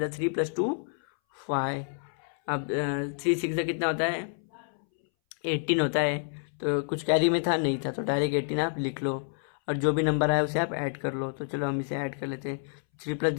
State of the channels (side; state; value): right; silent; 59 dB below the other